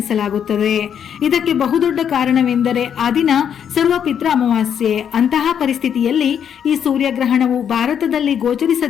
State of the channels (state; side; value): quieter; right; 8.4 dB